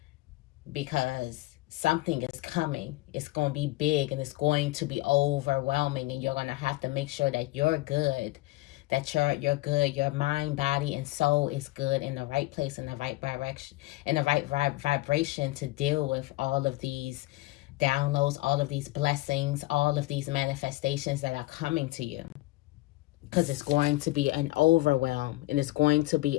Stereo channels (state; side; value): quieter; right; 19.2 dB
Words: because something is coming. It's going to be big and it's going to be overwhelming, and you're going to have to make sure that you're good. That you're good, your mind, body, and soul is good, in the right place, in the right direction, in the right vibration to deal with all of these downloads, all of these blessings, all of these manifestations that are coming to you. Because it's going to be an overwhelm, and it's going to be